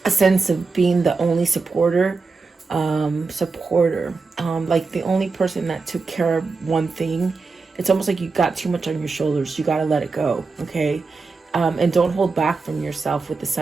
a sense of being the only supporter, like the only person that took care of one thing, it's almost like you got too much on your shoulders. You got to let it go, okay? And don't hold back from yourself with the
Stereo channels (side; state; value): left; quieter; 4.3 dB